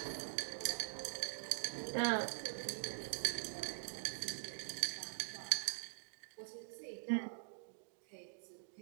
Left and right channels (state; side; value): silent; left; digital silence